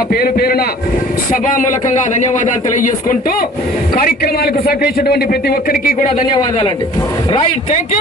పేరు పేరున సభామూలకంగా ధన్యవాదాలు తెలియజేసుకుంటూ కార్యక్రమాలకు సహకరించినటువంటి ప్రతి ఒక్కరికి కూడా ధన్యవాదాలండి. Right, thank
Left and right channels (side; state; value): both; normal; correlation 0.48